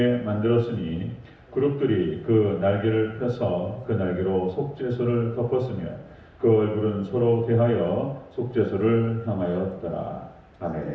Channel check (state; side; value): identical; both; correlation 1.00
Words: 만들었으니 그룹들이 그 날개를 펴서 그 날개로 속죄소를 덮었으며 그 얼굴은 서로 대하여 속죄소를 향하였더라.